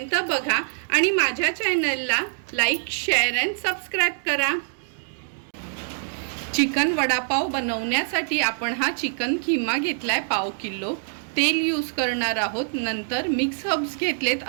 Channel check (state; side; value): silent; left; digital silence